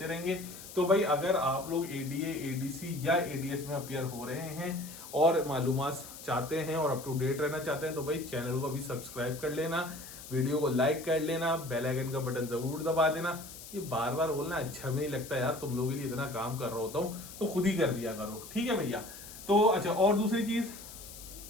रहेंगे। तो भाई अगर आप लोग एडीए, एडीसी या एडीएस में अपियर हो रहे हैं और मालूमात चाहते हैं और अप टू डेट रहना चाहते हैं तो भाई चैनल को अभी सब्सक्राइब कर लेना, वीडियो को लाइक कर लेना, बेल आइकन का बटन जरूर दबा देना। ये बार बार बोलना अच्छा भी नहीं लगता यार, तुम लोगों के लिए इतना काम कर रहा होता हूँ तो खुद ही कर दिया करो। ठीक है भैया। तो अच्छा, और दूसरी चीज,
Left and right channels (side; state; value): left; noise; hiss, 14 dB below the sound